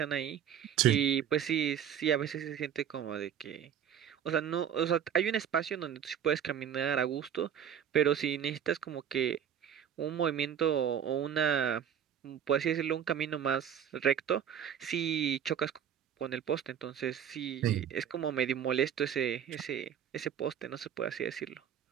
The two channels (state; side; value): quieter; left; 8.9 dB